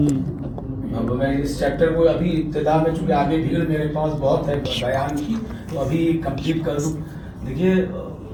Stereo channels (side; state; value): both; identical; correlation 1.00